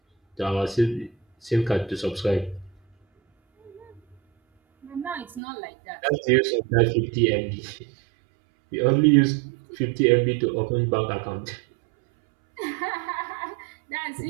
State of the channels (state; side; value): drops out; left; at 5.4 s